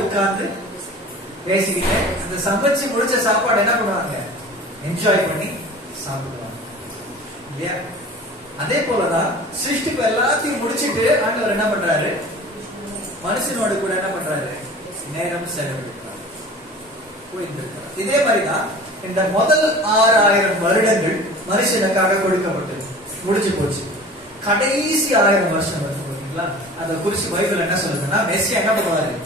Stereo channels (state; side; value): normal; both; correlation 0.41